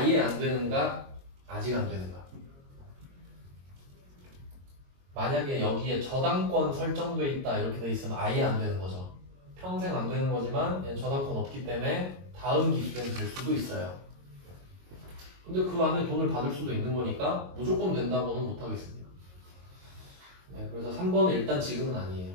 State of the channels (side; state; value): left; late; 22 ms